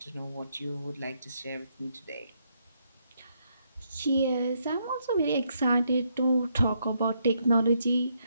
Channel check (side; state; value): both; inverted; correlation -0.76